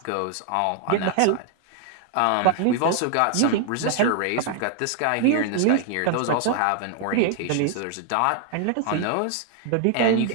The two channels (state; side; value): different; both; correlation 0.00